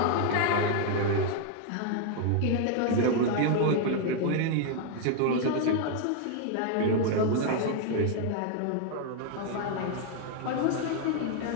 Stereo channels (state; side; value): different; both; correlation 0.00